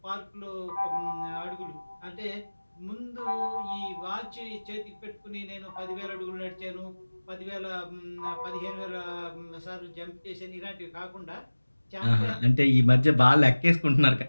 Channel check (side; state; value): both; inverted; correlation -1.00